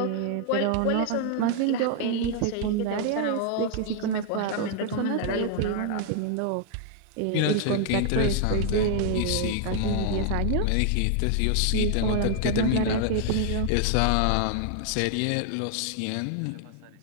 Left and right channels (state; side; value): different; both; correlation 0.00